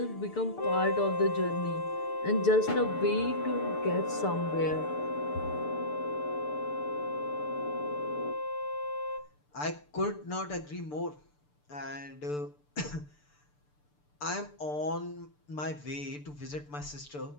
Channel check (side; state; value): right; late; 6.8 ms